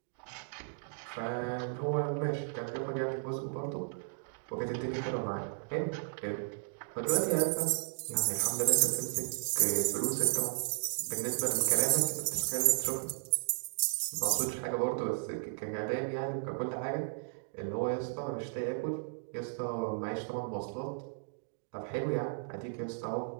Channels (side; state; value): left; silent; digital silence